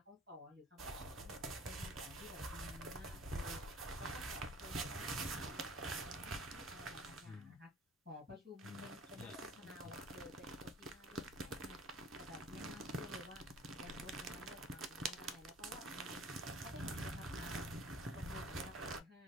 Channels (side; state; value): both; normal; correlation 0.49